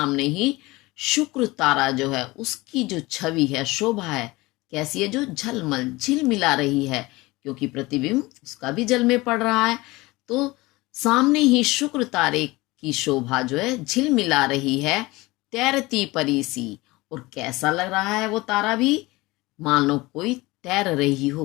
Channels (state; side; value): quieter; right; 21.4 dB